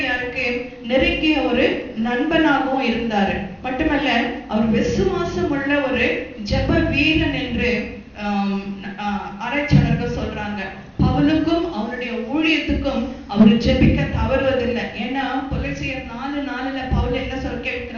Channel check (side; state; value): both; identical; correlation 1.00